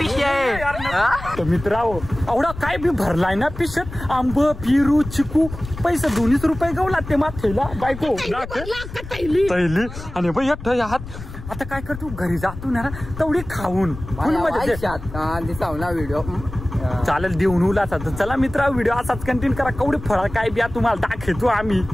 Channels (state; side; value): noise; left; rumble, 12 dB below the sound